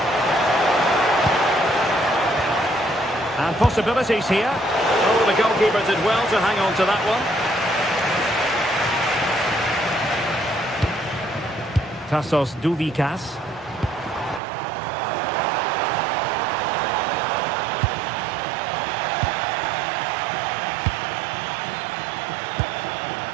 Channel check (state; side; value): drops out; left; at 14.4 s